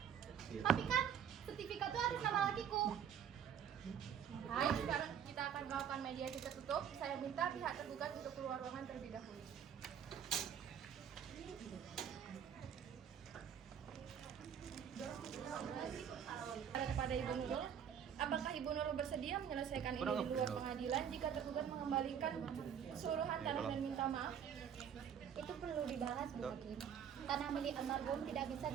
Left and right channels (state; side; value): quieter; left; 8.5 dB